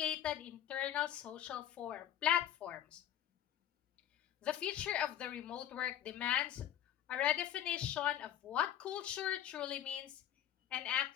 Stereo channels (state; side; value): quieter; right; 11.1 dB